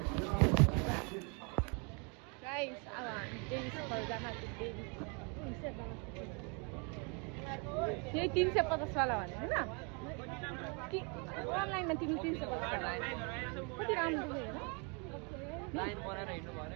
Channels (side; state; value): left; quieter; 33.8 dB